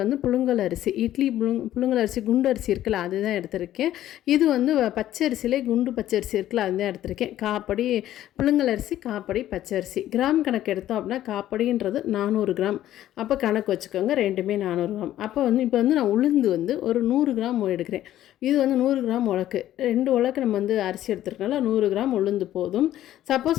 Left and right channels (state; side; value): quieter; right; 12.9 dB